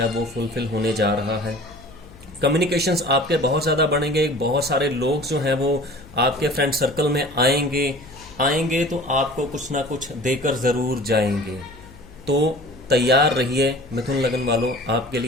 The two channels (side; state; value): left; noise; hum, 21 dB below the sound